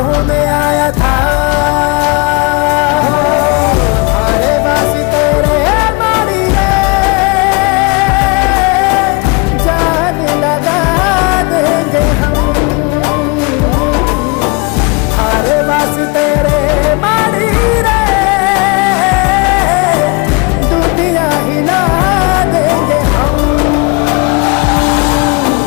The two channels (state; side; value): quieter; right; 29.2 dB